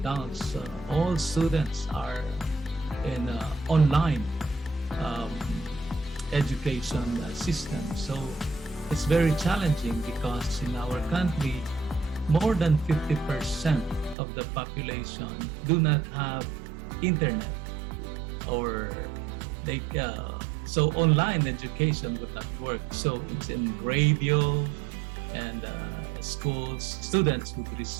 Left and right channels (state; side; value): drops out; left; at 14.2 s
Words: all students are in online um, education system. So it's very challenging because in our country, more than 50% of the population do not have internet, or they so online education would not work. So it's in radio, and students would